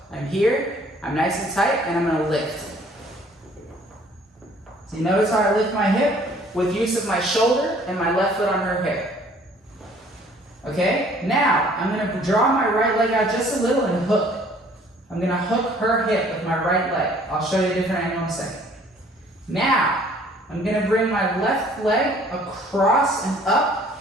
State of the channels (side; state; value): both; normal; correlation 0.56